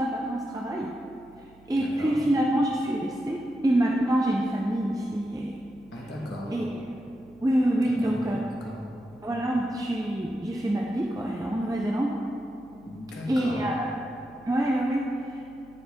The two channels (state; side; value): noise; right; hum, 27 dB below the sound